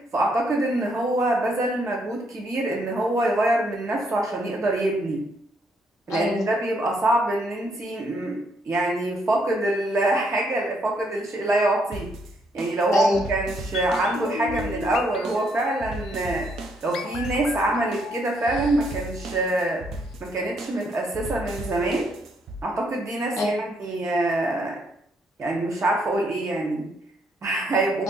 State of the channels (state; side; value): normal; both; correlation 0.72